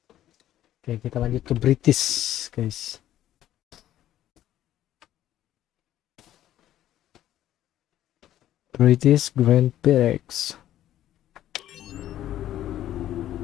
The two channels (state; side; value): quieter; right; 12.6 dB